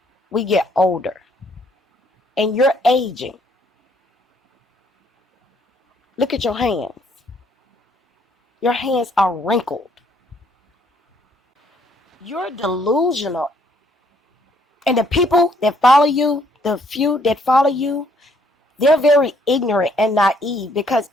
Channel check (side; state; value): both; normal; correlation 0.66